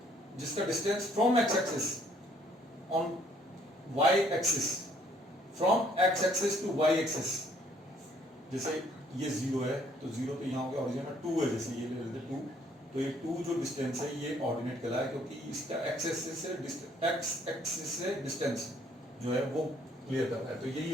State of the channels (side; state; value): both; normal; correlation 0.64